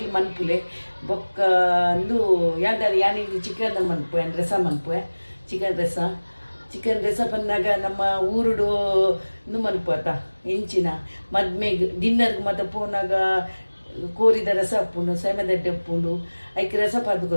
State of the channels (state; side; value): inverted; both; correlation -1.00